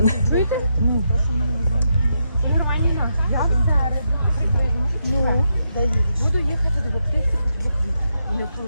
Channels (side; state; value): both; inverted; correlation -0.82